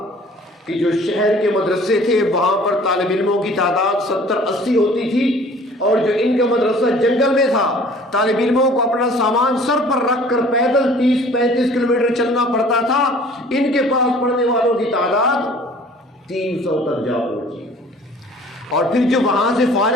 کہ جو شہر کے مدرسے تھے وہاں پر طالب علموں کی تعداد 70-80 ہوتی تھی، اور جو ان کا مدرسہ جنگل میں تھا، طالب علموں کو اپنا سامان سر پر رکھ کر پیدل 30-35 کلومیٹر چلنا پڑتا تھا۔ ان کے پاس پڑھنے والوں کی تعداد 300 تک جا پہنچی۔ اور پھر جو وہاں سے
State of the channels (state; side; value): normal; both; correlation 0.51